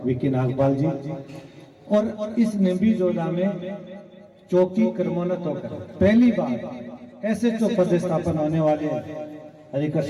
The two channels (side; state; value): both; identical; correlation 1.00